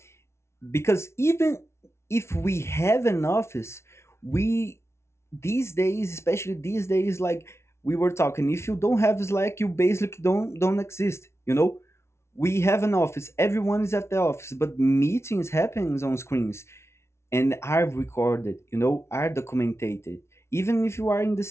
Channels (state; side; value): late; right; 0.13 ms